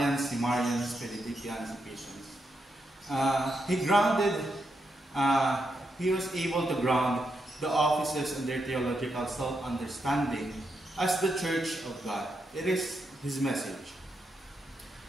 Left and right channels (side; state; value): both; normal; correlation 0.82